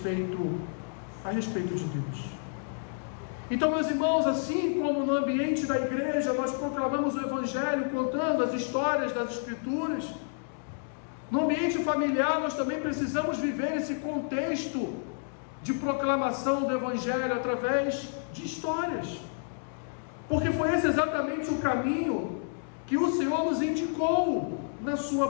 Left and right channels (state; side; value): silent; right; digital silence